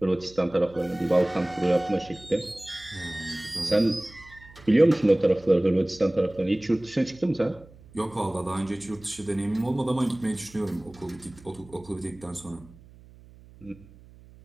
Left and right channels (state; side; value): noise; right; hum, 23 dB below the sound